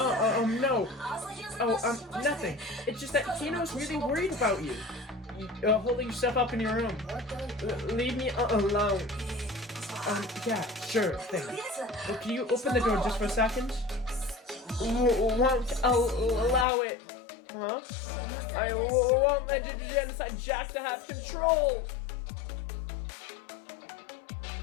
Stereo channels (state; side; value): drops out; right; at 16.7 s